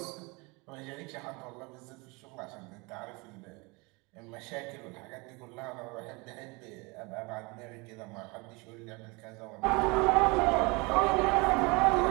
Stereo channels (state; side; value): quieter; left; 27.3 dB